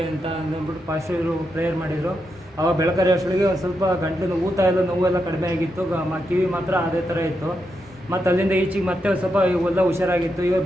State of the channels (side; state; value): both; normal; correlation 0.84